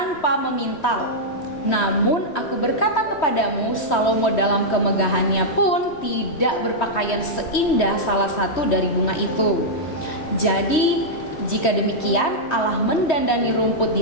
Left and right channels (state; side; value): late; right; 3.1 ms